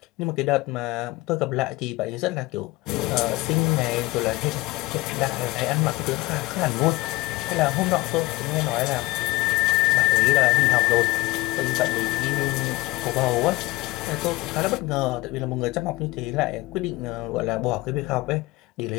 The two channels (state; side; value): quieter; right; 20.5 dB